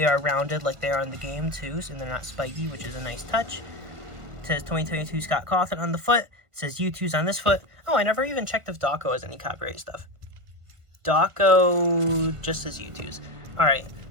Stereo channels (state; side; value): late; left; 1.5 ms